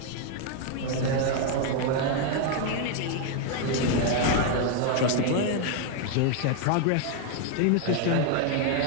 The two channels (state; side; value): different; both; correlation 0.00